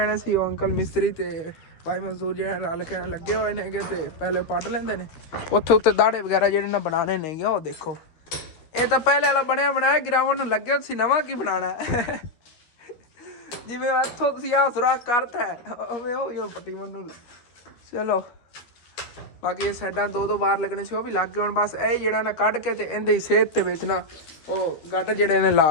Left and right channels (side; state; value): right; late; 12 ms